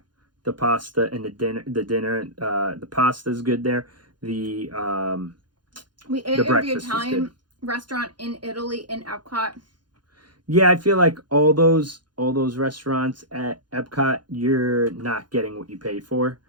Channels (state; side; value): late; left; 0.71 ms